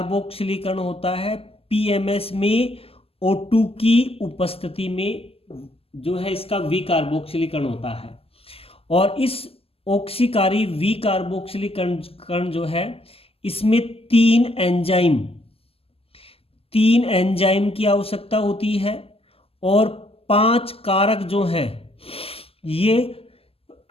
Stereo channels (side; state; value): right; late; 0.28 ms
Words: होता है पीएमएस में O2 की उपस्थिति में, जो है इसका विकार्बोक्सिलीकरण होता है। और इस ऑक्सीकारी विकार्बोक्सिलीकरण जो है इसमें 3 एंजाइम की आवश्यकता होती है और 5 कारक जो है ये